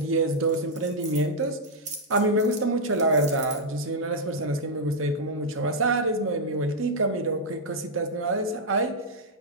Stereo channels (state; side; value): normal; both; correlation -0.05